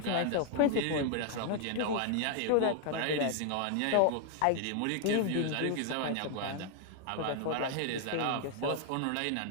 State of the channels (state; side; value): different; both; correlation 0.00